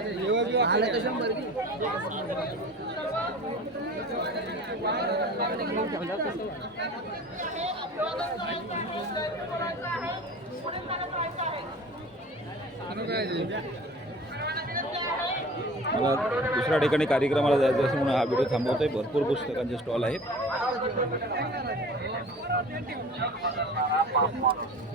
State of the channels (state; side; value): normal; both; correlation 0.41